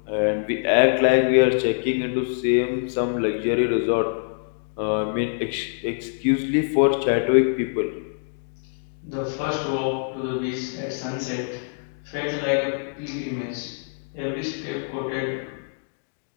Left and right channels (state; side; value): silent; right; digital silence